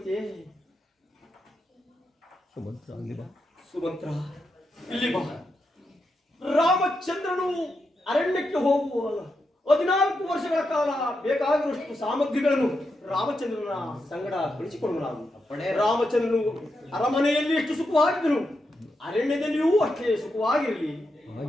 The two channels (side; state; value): both; normal; correlation 0.85